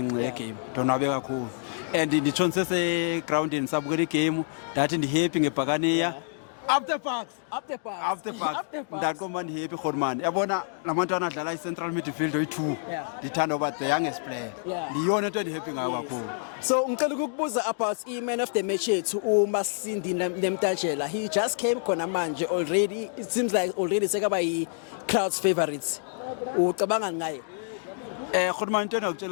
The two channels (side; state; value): right; silent; digital silence